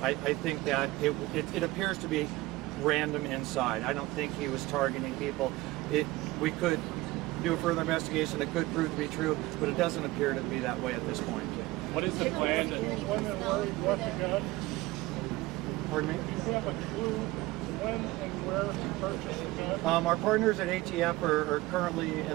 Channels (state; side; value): quieter; left; 19.4 dB